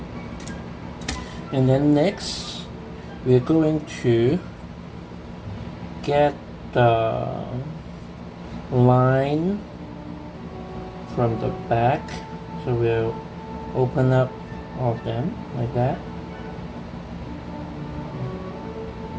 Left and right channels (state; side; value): identical; both; correlation 1.00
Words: And then next, we're going to get the line from the back. So we'll open up all of them like that.